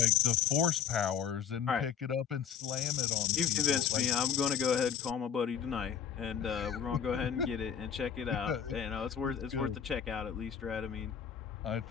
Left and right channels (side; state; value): right; quieter; 8.1 dB